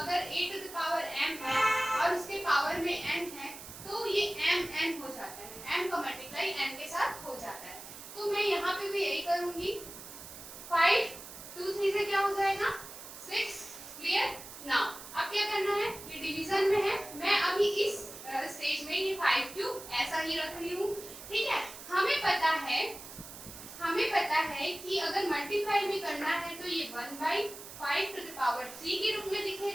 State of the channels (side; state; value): right; noise; hiss, 13 dB below the sound